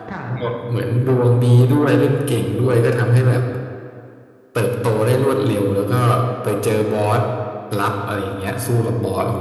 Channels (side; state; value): both; identical; correlation 1.00